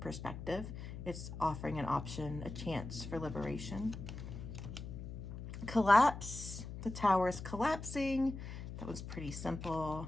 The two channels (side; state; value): left; noise; hum, 9 dB below the sound